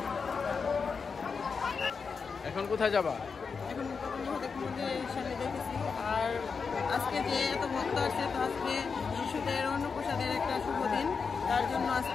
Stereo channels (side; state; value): right; quieter; 5.3 dB